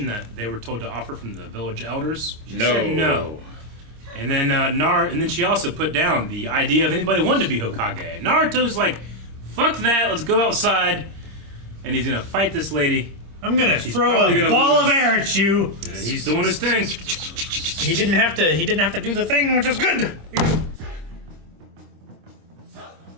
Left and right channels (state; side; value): late; left; 26 ms